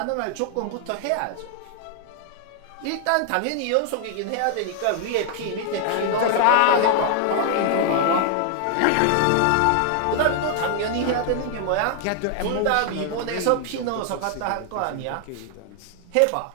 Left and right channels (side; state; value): both; different; correlation 0.00